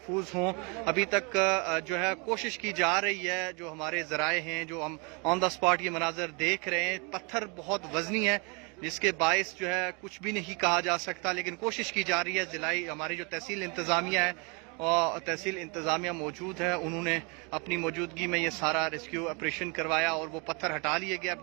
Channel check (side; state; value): left; quieter; 32.1 dB